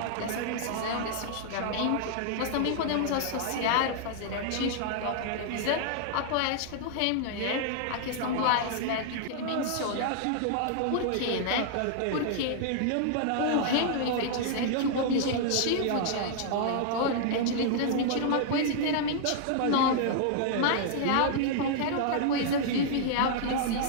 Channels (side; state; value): both; different; correlation -0.01